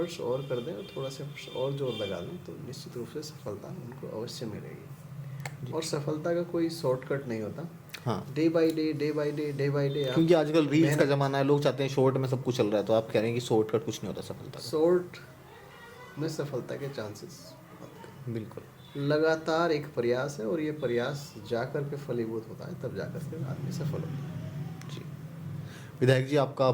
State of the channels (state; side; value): identical; both; correlation 1.00